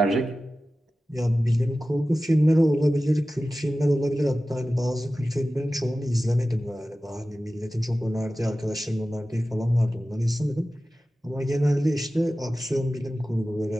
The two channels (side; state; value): both; normal; correlation 0.95